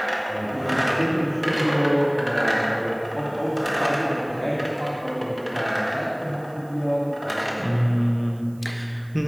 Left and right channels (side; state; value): right; noise; hiss, 29 dB below the sound